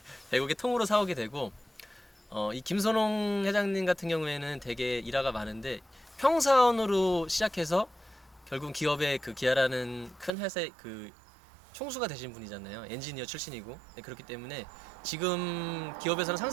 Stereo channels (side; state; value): left; drops out; at 10.3 s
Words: 100억에 통으로 사오게 되고, 이 김선홍 회장님 같은 경우에는 되게 일화가 많은데, 평사원으로 시작해서 결국 기업의 그 기아라는 큰 회사의 그 총수가 되신 분이잖아요. 엔지니어 출신이고. 네, 그렇기 때문에 지금 기업에서는